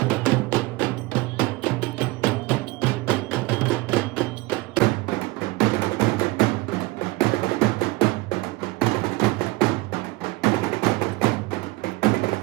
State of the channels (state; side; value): quieter; left; 22.0 dB